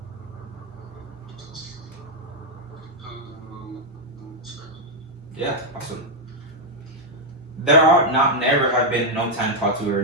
Yeah, awesome. There are not never have been no time taught too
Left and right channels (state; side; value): normal; both; correlation 0.00